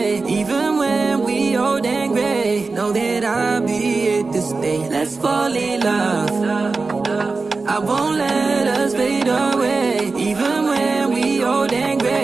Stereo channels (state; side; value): quieter; left; 4.0 dB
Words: Even when we old and gray, know that I'll be here to stay. Let's fall in love, I won't